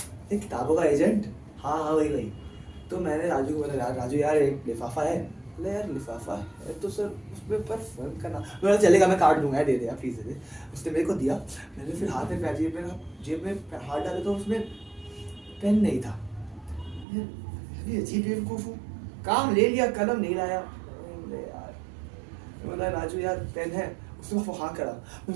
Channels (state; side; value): drops out; left; at 17.1 s